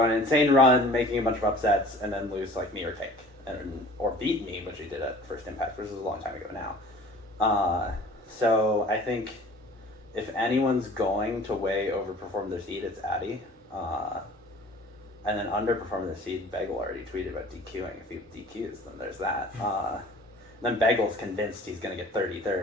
on an insane run, making a bunch of upsets, and then lose me or Cake, or beat me, which he did at First Impact, which is a long time ago now. So I think if anyone's going to way overperform their seed, it's Addy. And then underperform their seed, Bagel already tweeted about DQing. If he DQs, then there's that. Then Bagel's convinced he's going to get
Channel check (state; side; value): normal; both; correlation 0.47